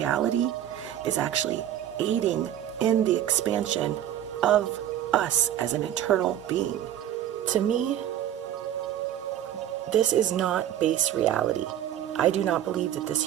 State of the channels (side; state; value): left; quieter; 11.2 dB